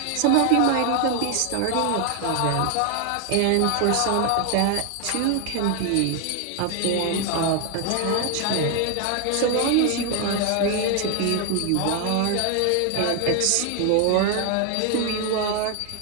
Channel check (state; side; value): different; both; correlation 0.00